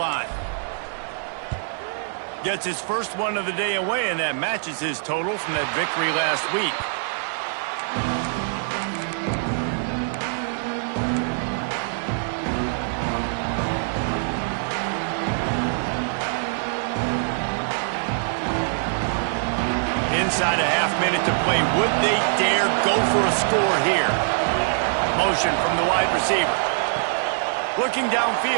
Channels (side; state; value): left; silent; 59 dB below the other